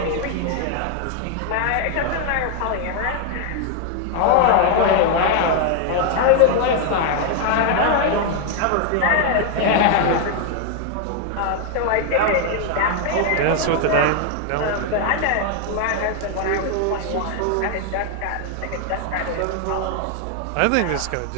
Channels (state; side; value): different; both; correlation 0.00